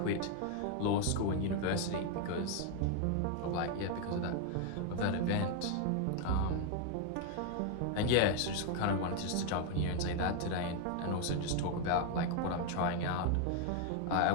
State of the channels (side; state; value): both; different; correlation 0.01